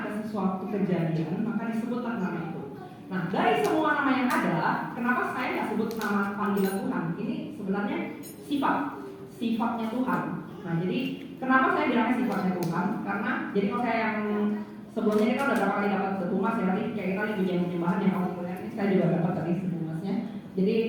ada sesuatu kejadian, maka disebutlah nama itu. Nah, dari semua nama yang ada, kenapa saya nggak sebut nama panggilan Tuhan? Ini sebenarnya sifatnya Tuhan. Nah, jadi kenapa saya bilangnya sifatnya Tuhan? Karena jadi kalau saya yang sebelumnya ini kan udah berapa kali dapat sebumas ya, tadi kayak kita pujian penyembahan yang kamu kuliah ini saya juga dapat tadi sebumasnya. Jadi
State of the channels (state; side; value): identical; both; correlation 1.00